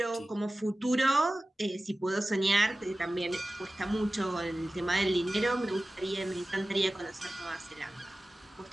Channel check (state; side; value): normal; both; correlation 0.96